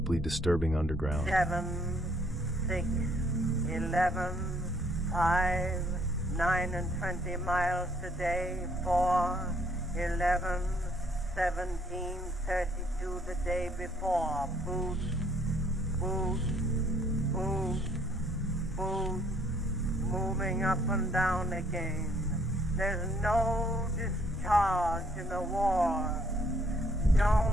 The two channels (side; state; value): both; normal; correlation 0.65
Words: disturbing underground. 7, 6, 11, 5, 9 and 20 miles today, 4, 11, 17, 32 the day before. Boot, boot, boot, boot, moving up and down again. There's no discharge in the war.